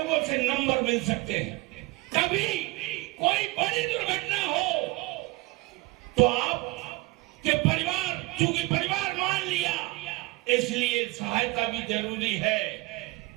से नंबर मिल सकते हैं। कभी कोई बड़ी दुर्घटना हो तो आपके परिवार, चूंकि परिवार मान लिया, इसलिए सहायता भी जरूरी है।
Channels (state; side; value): quieter; left; 22.4 dB